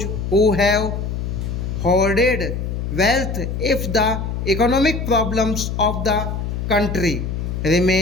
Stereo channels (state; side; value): noise; left; hum, 3 dB below the sound